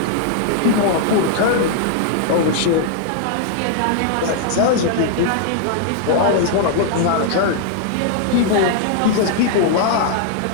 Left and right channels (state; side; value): different; both; correlation 0.00